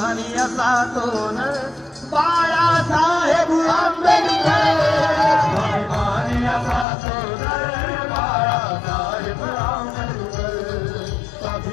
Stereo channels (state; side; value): drops out; right; at 6.9 s